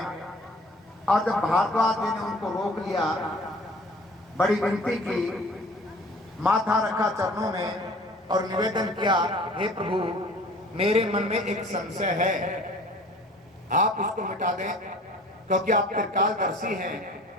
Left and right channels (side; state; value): both; normal; correlation 0.48